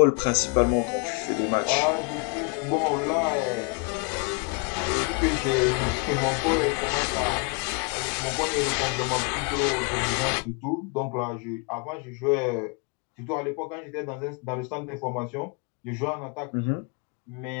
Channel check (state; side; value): quieter; right; 34.6 dB